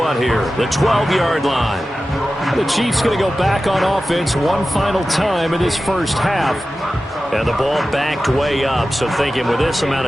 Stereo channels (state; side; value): normal; both; correlation 0.94